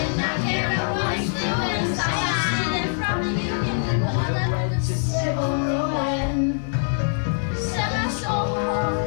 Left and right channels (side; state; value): right; silent; digital silence